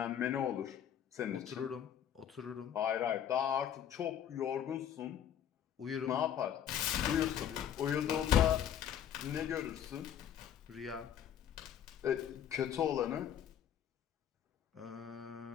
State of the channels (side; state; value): right; quieter; 9.6 dB